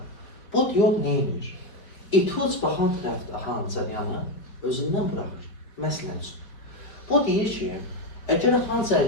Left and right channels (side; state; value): right; late; 4.3 ms